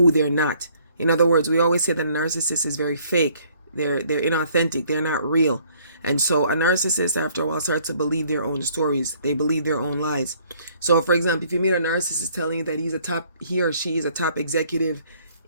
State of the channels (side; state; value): both; inverted; correlation -0.62